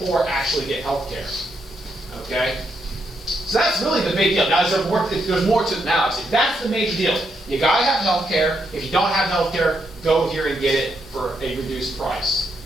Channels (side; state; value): both; normal; correlation 0.79